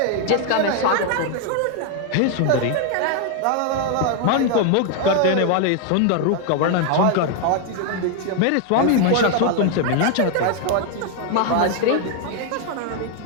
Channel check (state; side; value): different; both; correlation 0.01